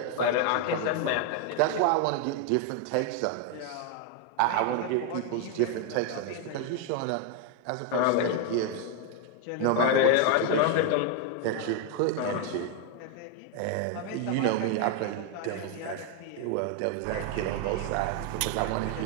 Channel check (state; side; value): different; both; correlation 0.01